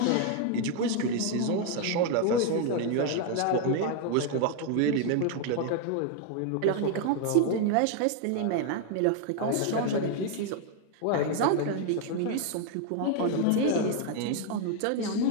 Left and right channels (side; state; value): both; different; correlation 0.00